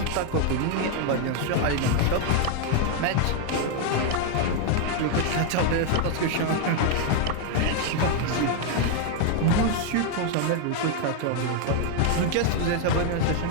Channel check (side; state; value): both; different; correlation 0.01